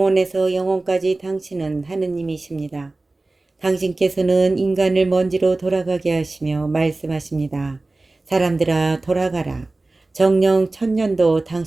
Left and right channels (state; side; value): quieter; left; 3.1 dB